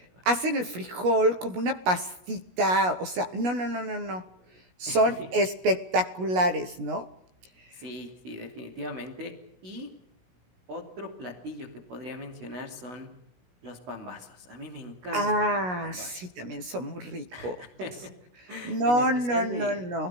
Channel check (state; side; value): late; left; 16 ms